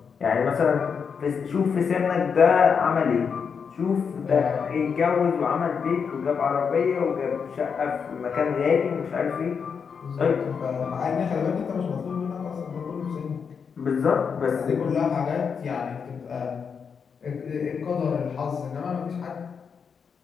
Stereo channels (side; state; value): right; quieter; 6.3 dB